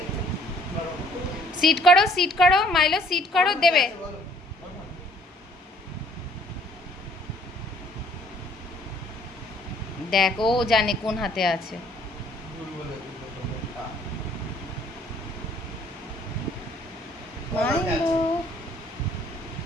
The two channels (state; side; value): normal; both; correlation 0.59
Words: সিট করো মাইলো, সিট করো, দেবে। দেখ ও জানে কোন হাতে আছে। মাইলো